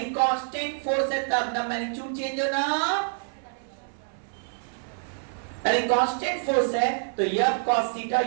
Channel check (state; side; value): silent; left; 60 dB below the other